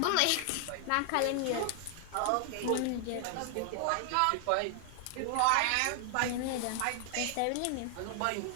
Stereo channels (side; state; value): both; different; correlation 0.00